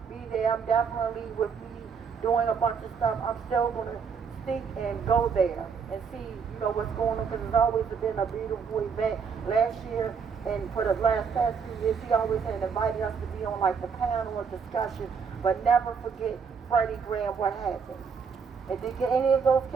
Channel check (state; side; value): quieter; left; 6.0 dB